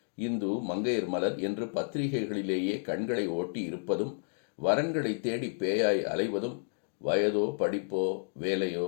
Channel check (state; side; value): silent; right; digital silence